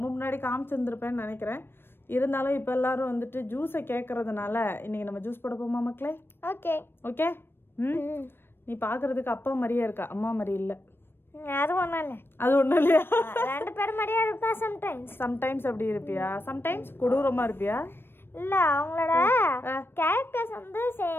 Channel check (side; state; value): right; late; 0.10 ms